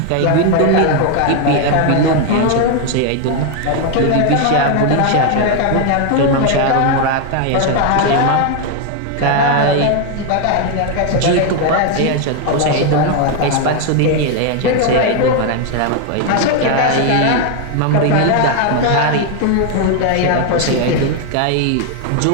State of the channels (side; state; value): both; different; correlation 0.01